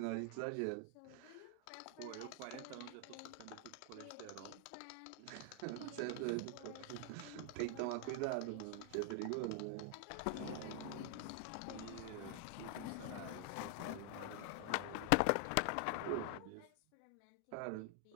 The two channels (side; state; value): both; different; correlation 0.00